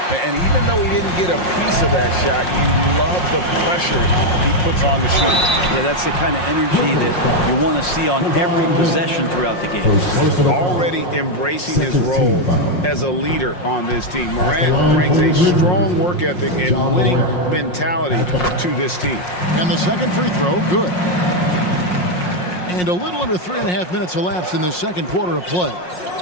And even though he didn't get a piece of that shot, you love the pressure he puts on the shooter. Yeah, that's the kind of energy that you want to see on every possession throughout the game. Already embracing his role as a leader on this team. Morant brings a strong work ethic and winning mentality to this team. And the second free throw, good. And a little under 3.5 minutes elapsed in the second quarter of play.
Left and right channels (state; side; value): late; right; 5.6 ms